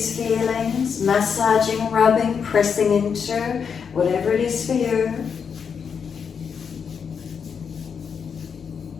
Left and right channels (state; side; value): quieter; right; 6.6 dB